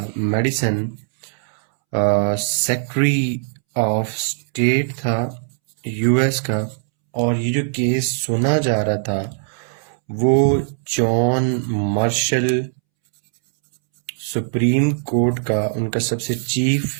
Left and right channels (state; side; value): silent; left; 66 dB below the other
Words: सेक्रेटरी ऑफ स्टेट था यूएस का। और ये जो केस सुना जा रहा था वो जॉन मार्शल, सुप्रीम कोर्ट का उनका सबसे